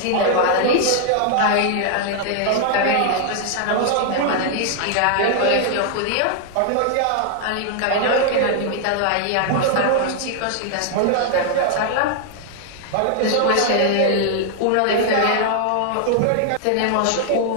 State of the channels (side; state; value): both; different; correlation 0.00